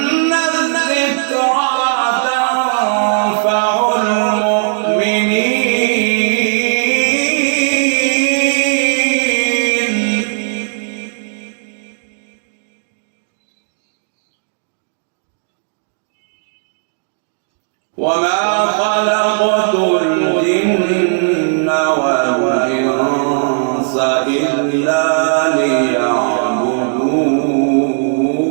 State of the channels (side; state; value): left; silent; digital silence